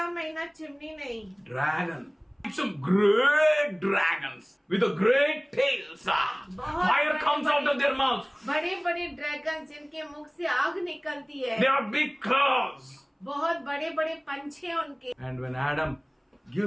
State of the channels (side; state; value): both; identical; correlation 1.00